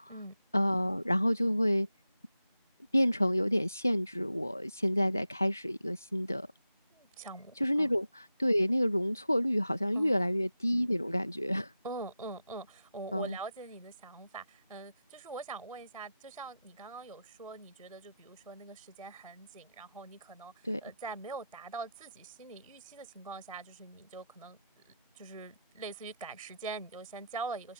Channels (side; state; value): both; inverted; correlation -0.91